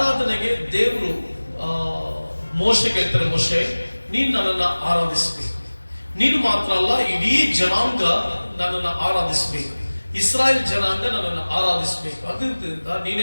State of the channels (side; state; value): both; inverted; correlation -1.00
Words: ದೇವರು ಮೋಶೆಗೆ ಹೇಳ್ತಾರೆ, ಮೋಶೆ ನೀನು ನನ್ನನ್ನು ಆರಾಧಿಸಬೇಕು. ನೀನು ಮಾತ್ರ ಅಲ್ಲ, ಇಡೀ ಜನಾಂಗ ನನ್ನನ್ನು ಆರಾಧಿಸಬೇಕು, ಇಸ್ರಾಯೇಲ್ ಜನಾಂಗ ನನ್ನನ್ನು ಆರಾಧಿಸಬೇಕು. ಅದರಿಂದ